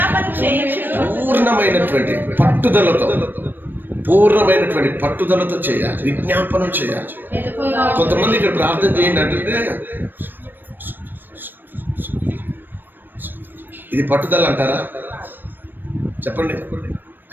పూర్ణమైనటువంటి పట్టుదలతో చేయాలి, విజ్ఞాపనం చేయాలి. కొంతమంది ఇక్కడ ప్రార్థన చేయండి అంటే ఇది పట్టుదల అంటారా? చెప్పండి.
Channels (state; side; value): late; left; 0.093 ms